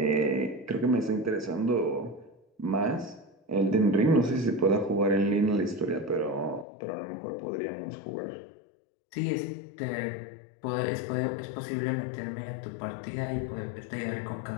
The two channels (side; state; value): right; drops out; at 6.7 s